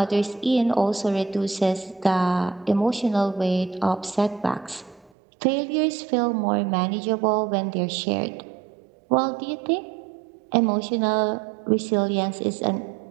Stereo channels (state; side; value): drops out; left; at 5.1 s